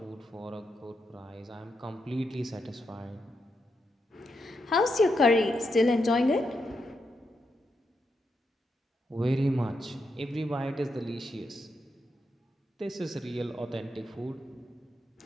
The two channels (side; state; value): both; normal; correlation 0.83